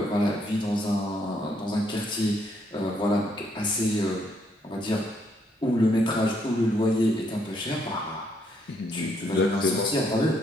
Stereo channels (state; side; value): normal; both; correlation 0.72